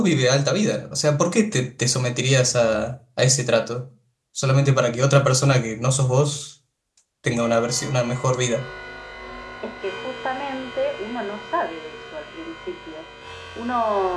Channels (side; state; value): both; identical; correlation 1.00